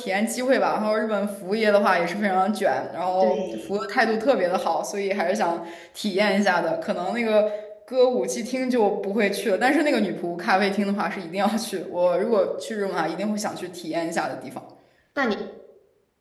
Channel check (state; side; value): identical; both; correlation 1.00